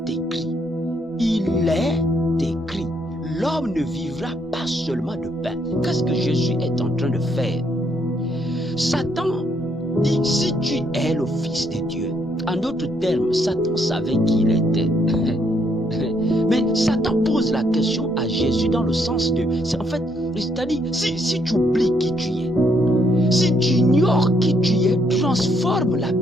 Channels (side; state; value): both; normal; correlation 0.72